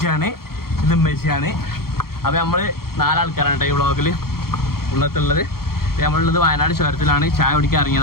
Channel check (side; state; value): right; late; 0.94 ms